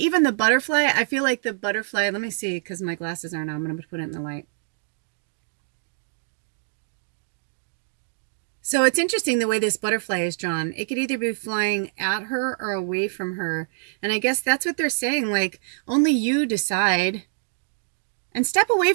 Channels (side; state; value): left; silent; digital silence